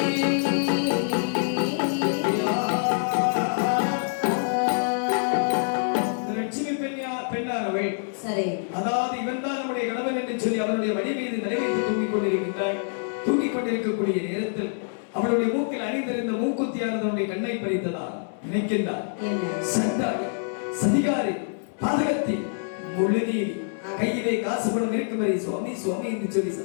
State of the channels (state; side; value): silent; right; 61 dB below the other